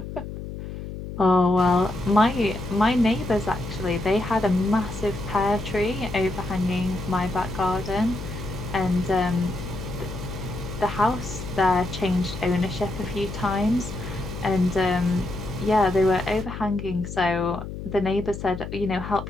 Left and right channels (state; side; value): noise; left; hum, 9 dB below the sound